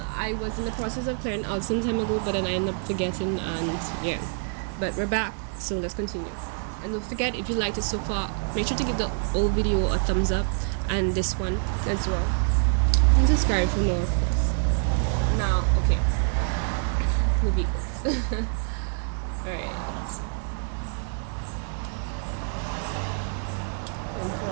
was in the process of clearing out some time ago, but then I ended up forgetting, and yeah. But we're back, so let's continue. And don't forget, if you liked it so far, make sure to give the old video a thumbs up, and this one as well. And subscribe for more, of course. Now, okay. The vehicles. Alright. And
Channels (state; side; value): silent; left; 61 dB below the other